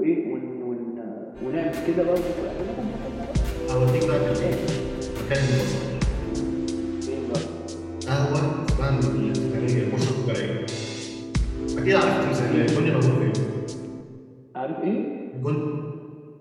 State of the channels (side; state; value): both; identical; correlation 1.00